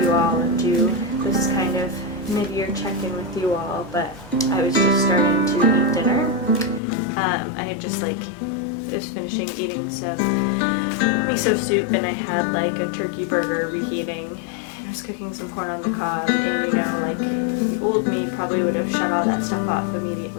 you all and do this kind of mid-year check-in with you all, but I was just starting to eat dinner. I had just I was finishing eating some miso soup, and I had like a turkey burger reheating. I was cooking some corn on the cob, and old me probably would have shut all that stuff off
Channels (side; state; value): right; drops out; at 6.8 s